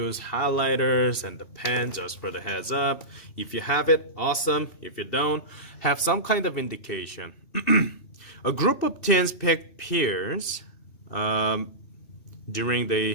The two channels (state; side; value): late; right; 2.6 ms